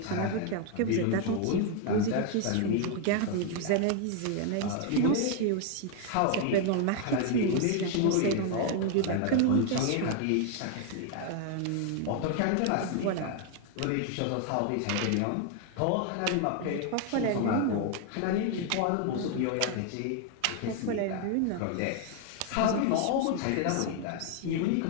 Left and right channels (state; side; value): different; both; correlation 0.00